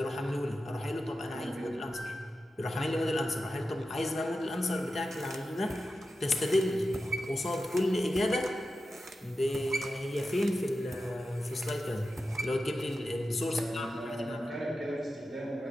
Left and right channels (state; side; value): normal; both; correlation 0.91